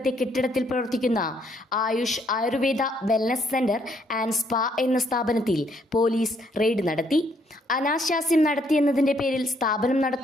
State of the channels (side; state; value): both; normal; correlation 0.69